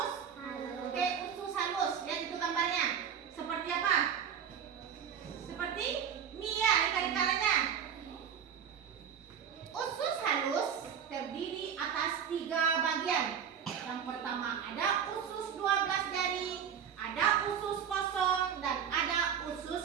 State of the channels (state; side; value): quieter; left; 8.1 dB